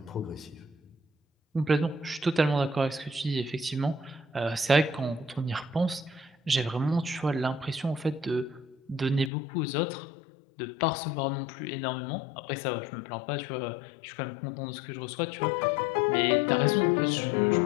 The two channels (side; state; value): right; drops out; at 9.3 s